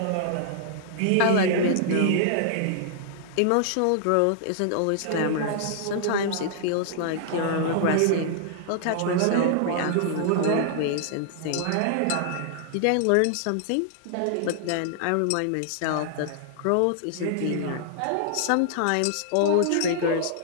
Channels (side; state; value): both; different; correlation -0.01